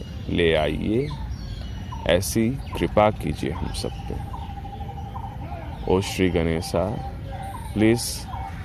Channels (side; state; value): both; identical; correlation 1.00